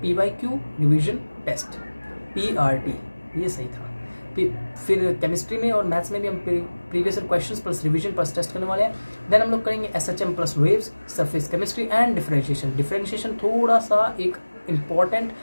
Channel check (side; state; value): both; inverted; correlation -1.00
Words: PYQ revision test, PRT, ये सही था। फिर केमिस्ट्री में और मैथ्स में भी हम previous questions plus revision plus test करने वाले हैं। देन हम लोग करेंगे SHM plus waves, surface chemistry and differentiation. Differentiation थोड़ा सा एक इम्पॉर्टेंट